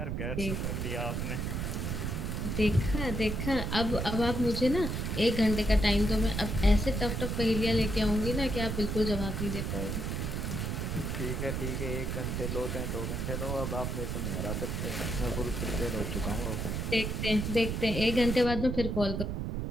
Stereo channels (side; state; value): right; noise; rumble, 2 dB below the sound